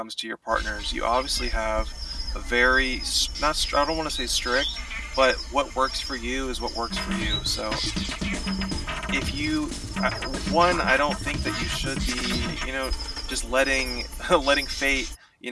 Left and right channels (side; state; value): both; identical; correlation 1.00